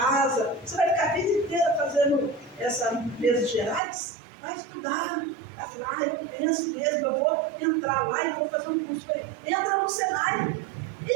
Você vai ficar a vida inteira fazendo essas empresas gerais? Vai estudar. Ela falou, eu penso mesmo, eu vou entrar lá e vou fazer um curso. Eu falei, entra no Senai,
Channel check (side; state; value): left; drops out; at 3.8 s